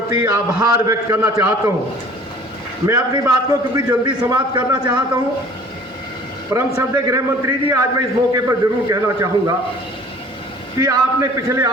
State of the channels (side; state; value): both; normal; correlation 0.50